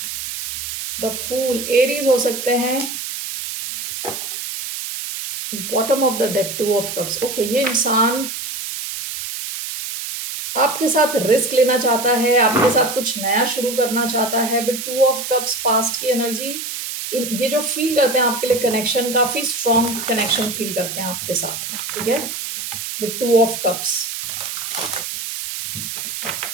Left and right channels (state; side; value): noise; right; hiss, 6 dB below the sound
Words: द फूल, एरीज हो सकते हैं. Bottom of the deck, two of cups. Okay, ये इंसान आपके साथ रिस्क लेना चाहता है, आपके साथ कुछ नया शुरू करना चाहता है. With two of cups, past की एनर्जी, ये जो फील करते हैं आपके लिए कनेक्शन, काफी स्ट्रॉन्ग कनेक्शन फील करते हैं आपके साथ. ठीक है, with two of cups.